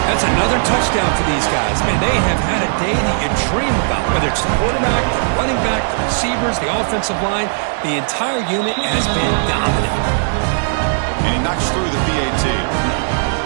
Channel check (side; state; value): left; silent; digital silence